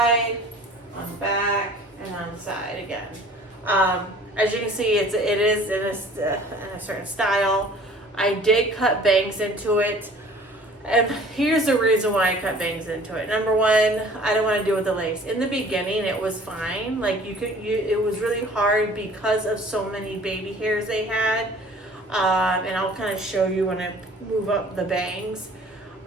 on the back, and on the side again. As you can see, it is in a certain style. I did cut bangs into it. And here's the reason why I cut bangs into it. Number one, I don't want to deal with the lace. In the beginning, it was fine. Like it was really hard because of so many baby hairs they had. And I'll kind of show you when I move up the bangs.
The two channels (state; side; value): normal; both; correlation 0.49